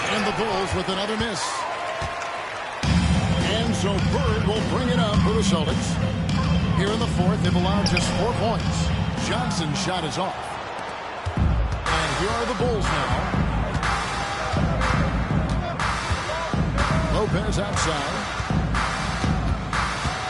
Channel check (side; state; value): both; identical; correlation 1.00